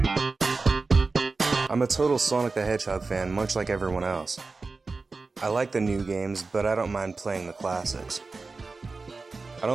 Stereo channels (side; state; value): left; quieter; 4.0 dB